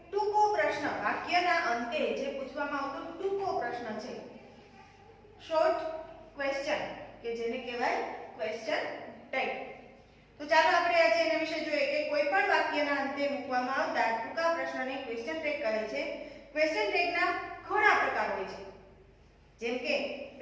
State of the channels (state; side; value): identical; both; correlation 1.00